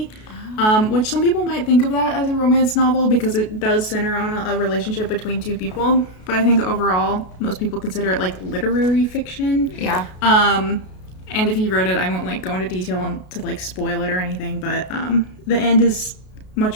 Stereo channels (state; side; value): late; right; 33 ms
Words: which some people might think of that as a romance novel because it does center on a relationship between two people. But I think overall, most people consider it like literary fiction. Yeah. And if you wrote it, I won't like go into detail to like spoil it or anything, but the end is